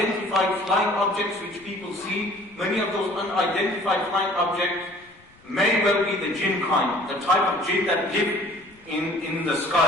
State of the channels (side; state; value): left; noise; rumble, 29 dB below the sound